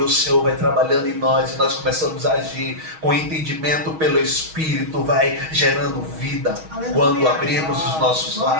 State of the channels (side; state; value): left; late; 6.3 ms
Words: o Senhor vai trabalhando em nós e nós começamos a agir com entendimento pelo Espírito, vai gerando vida. Aleluia. Quando abrimos os nossos